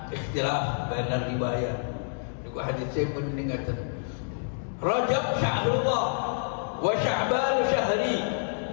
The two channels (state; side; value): silent; right; digital silence